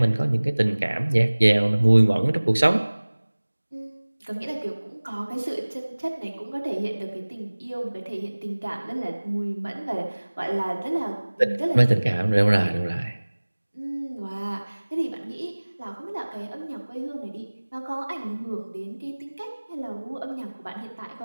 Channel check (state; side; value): inverted; both; correlation -1.00